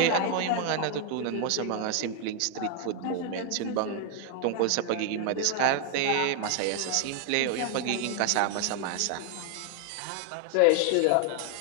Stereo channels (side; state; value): both; different; correlation 0.00